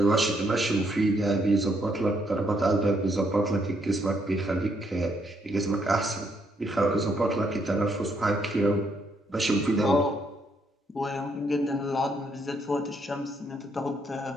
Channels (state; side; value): normal; both; correlation 0.73